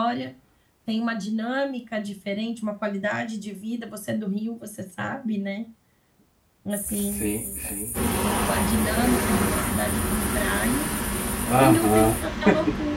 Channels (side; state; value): both; identical; correlation 1.00